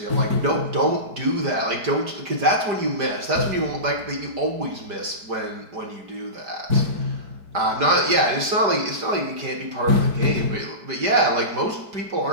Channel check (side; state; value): left; late; 5.0 ms